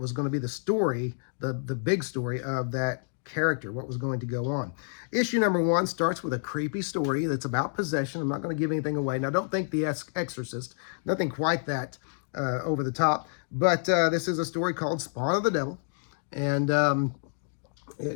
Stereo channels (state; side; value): silent; right; digital silence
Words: the story, the big story of that character, what was going to go on. Issue number 1 starts with a creepy story that's about possession. I'm not going to give anything away. Now, don't think The Exorcist, nothing quite that over the top, but this is a story called Spawn of the Devil, and